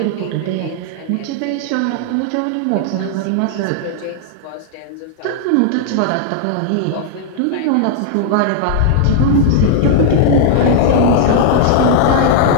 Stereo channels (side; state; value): both; different; correlation -0.01